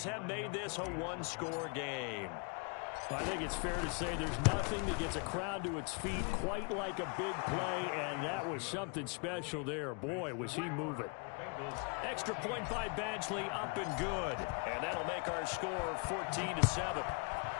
have made this a one-score game. I think it's fair to say there's nothing that gets a crowd to its feet quite like a big play, and that was something special there. Boy, was he moving. Extra point by Badgley, up and good. And that'll make our score 14-7.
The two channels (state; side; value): quieter; right; 34.4 dB